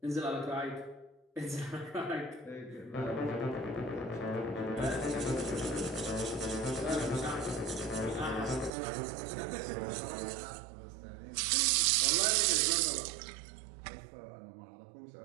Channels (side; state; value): left; drops out; at 8.7 s